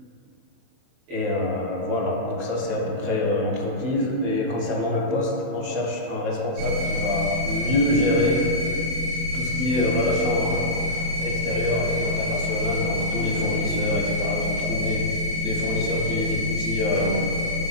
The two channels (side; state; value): left; late; 23 ms